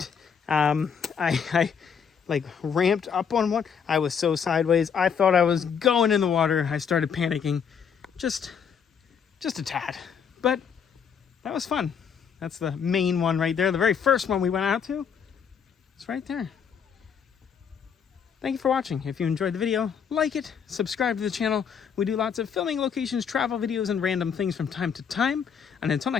I like ramped up on one. I was so sideways. I thought I was going in the water. I started panicking just a tad. But that was fun. That's the main one right there. The very first one we went out to. It's right there. Thank you for watching. If you enjoyed the video, like it, subscribe to the channel. We do lots of filming locations, travel videos, and random things from time to time. And until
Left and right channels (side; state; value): right; quieter; 7.0 dB